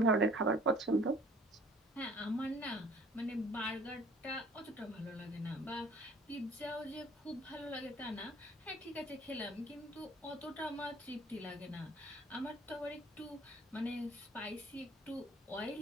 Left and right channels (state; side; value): normal; both; correlation 0.53